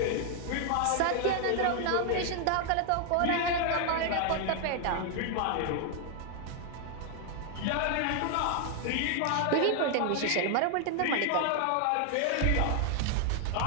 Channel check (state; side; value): different; both; correlation 0.00